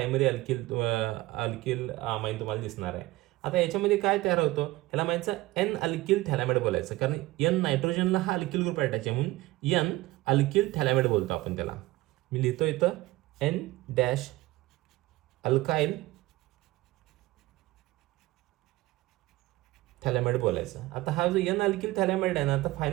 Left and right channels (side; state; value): left; quieter; 18.7 dB